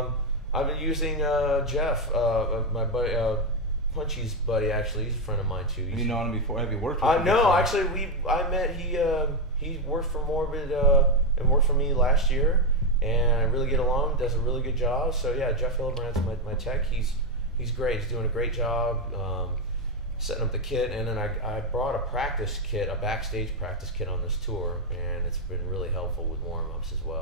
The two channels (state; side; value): normal; both; correlation 0.07